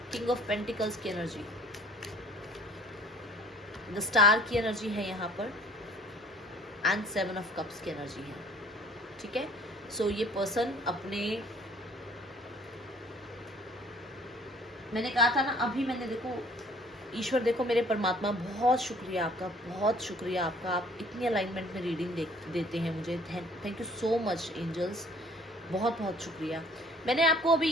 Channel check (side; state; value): both; normal; correlation 0.54